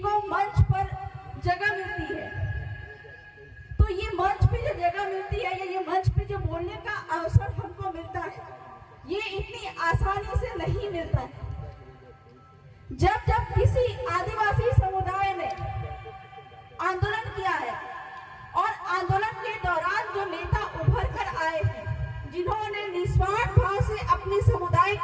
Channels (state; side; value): identical; both; correlation 1.00